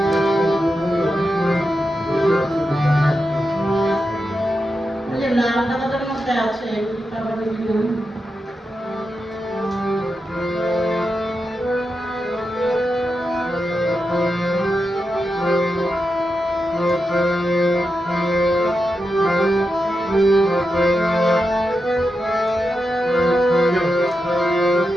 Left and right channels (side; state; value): both; normal; correlation 0.88